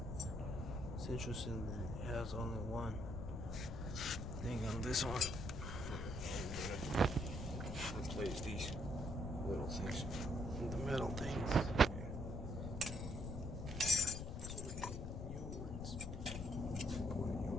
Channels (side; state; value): left; noise; rumble, 4 dB below the sound